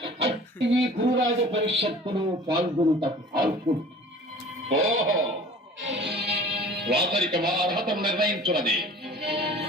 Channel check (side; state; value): both; normal; correlation 0.45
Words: అట్టి ఈ గురురాజ పరిషత్తులు పాల్గొనుటకు పాల్గొను. ఓహో, రాతరిక మా అర్హతను నిర్ణయించున్నది.